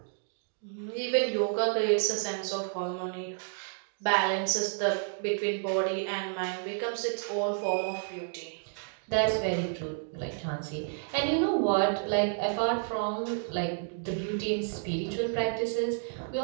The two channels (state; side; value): silent; left; digital silence